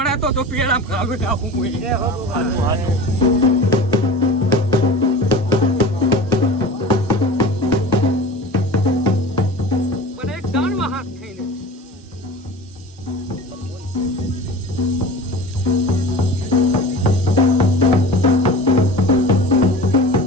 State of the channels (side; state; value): both; normal; correlation 0.35